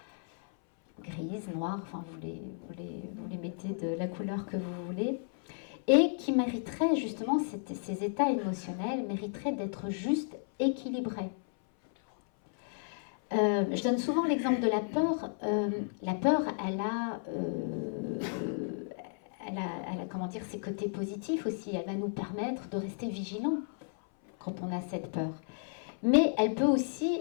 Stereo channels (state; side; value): silent; right; 56 dB below the other